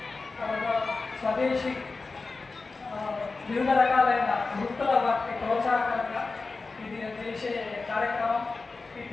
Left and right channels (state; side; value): quieter; right; 3.9 dB